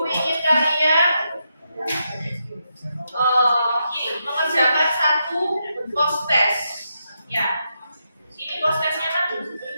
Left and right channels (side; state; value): both; inverted; correlation -0.83